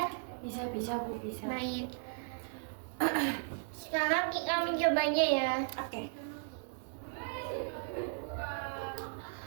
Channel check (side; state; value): left; silent; 54 dB below the other